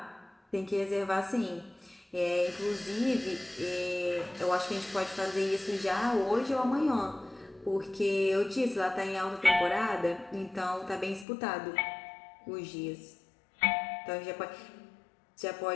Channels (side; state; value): right; drops out; at 11.2 s